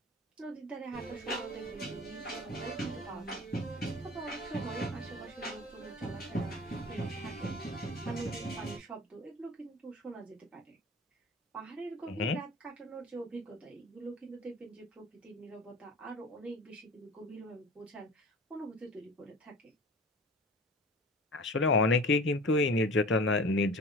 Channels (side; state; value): both; normal; correlation 0.39